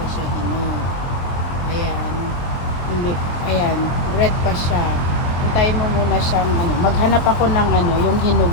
siya hinog. Ayan. Hindi, ayan, red pa siya. Hintayin mo muna siyang, maghanap ako ng, yung hinog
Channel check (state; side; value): late; right; 23 ms